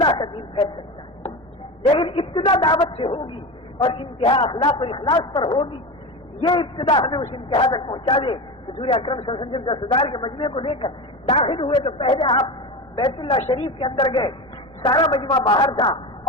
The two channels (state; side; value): normal; both; correlation 0.24